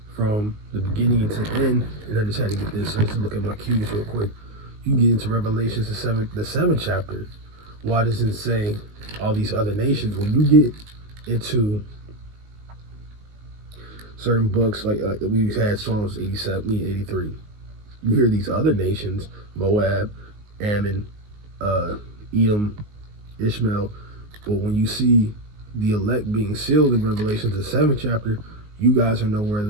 from the beginning to end, and I just had to get this, let's look at my cues real quick. You can get into Revelations, the seventh chapter. Why does it say all these other nations? When you get into certain books, like we've had Psalms 87, 83, you hear these other nations, Moab, Ammon, Edom, Ishmael, but when you see the elect being sealed in Revelation, the seventh chapter, you guys are nowhere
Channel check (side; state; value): left; late; 19 ms